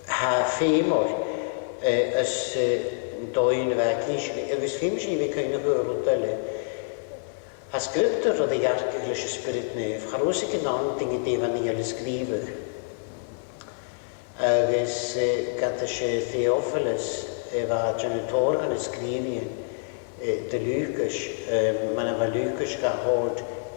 haar femor, als doien wat kiesje, is femor we kunnen horen tellen. As scriptor o de English spirit neuf, charos ik een dingen die van hier schrijven. Agus gata se Theophilus, wat janitor gaan schrijven, de Lucas, man va Lucas gehoord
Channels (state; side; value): silent; right; digital silence